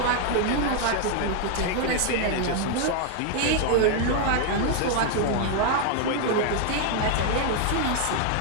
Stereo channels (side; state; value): both; different; correlation 0.01